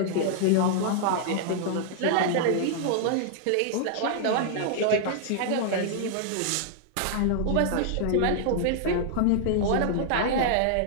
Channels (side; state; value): both; different; correlation -0.01